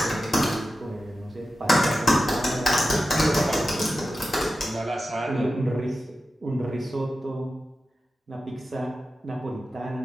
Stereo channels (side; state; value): both; normal; correlation 0.92